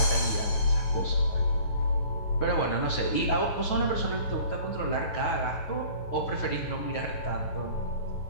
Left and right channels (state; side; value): late; right; 9.3 ms